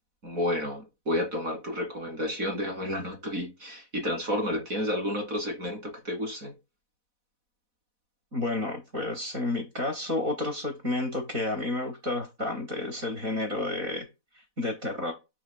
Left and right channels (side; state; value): left; late; 4.1 ms